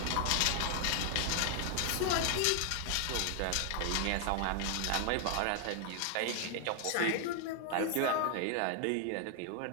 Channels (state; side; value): different; both; correlation 0.00